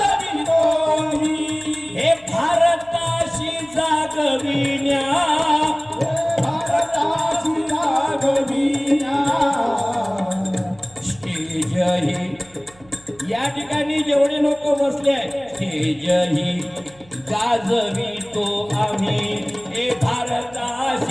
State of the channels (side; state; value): right; noise; hum, 27 dB below the sound